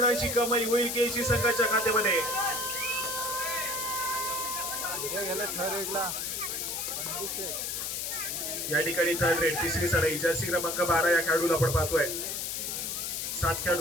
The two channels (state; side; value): noise; left; hiss, 3 dB below the sound